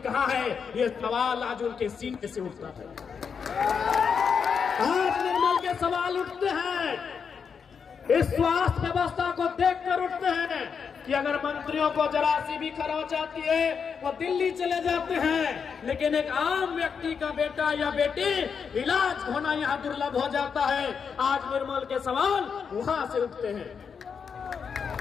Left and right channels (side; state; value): right; quieter; 6.4 dB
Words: है, ये सवाल आज उनके सीने से उठता है। आज निर्मल के सवाल उठते हैं, इस स्वास्थ्य व्यवस्था को देखकर उठते हैं कि अगर मंत्रियों को जरा सी भी खरोंच आती है वो दिल्ली चले जाते हैं, लेकिन एक आम व्यक्ति का बेटा या बेटी इलाज होना यहाँ दुर्लभ हो जाता है। आज निर्मल के सवाल वहां से उठते हैं।